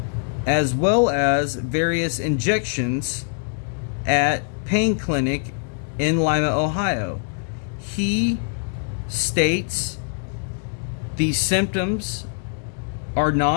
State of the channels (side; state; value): right; silent; digital silence